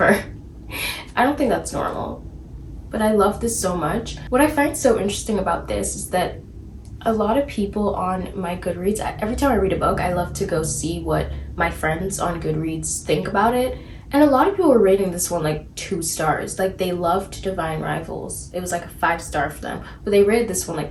I don't think that's normal, but I love this so much. What I find so interesting about this is that a lot of people on my Goodreads, every time I read a book, I love to go see what my friends on Goodreads think about it. And a lot of people were rating this one like 2 stars. Like they loved Divine Rivals. It was like a 5-star for them, but they rated this one like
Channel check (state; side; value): identical; both; correlation 1.00